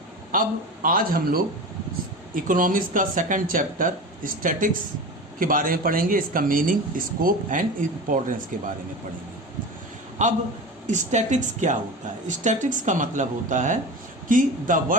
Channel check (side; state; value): both; normal; correlation 0.30